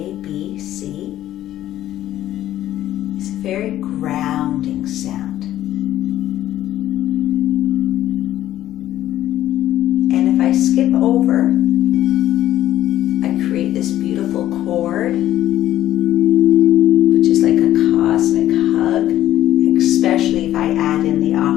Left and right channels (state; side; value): quieter; right; 13.1 dB